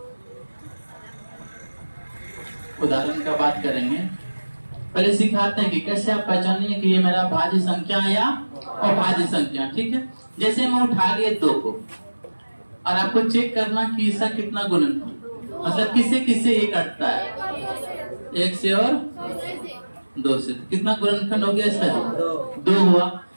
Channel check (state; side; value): inverted; both; correlation -1.00